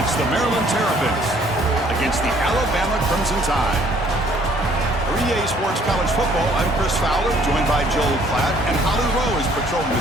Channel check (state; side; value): normal; both; correlation 0.61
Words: the Maryland Terrapins against the Alabama Crimson Tide. For EA Sports College Football, I'm Chris Fowler, joined by Joel Klatt, and Holly Rowe is patrolling